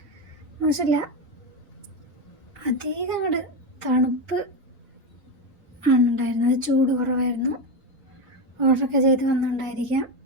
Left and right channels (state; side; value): normal; both; correlation 0.14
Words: മോശമില്ല, അധികം അങ്ങോട്ട് തണുപ്പ് ആണ് ഉണ്ടായിരുന്നത്, ചൂട് കുറവായിരുന്നു. ഓർഡറൊക്കെ ചെയ്ത് വന്നിട്ടുണ്ടായിരിക്കാം.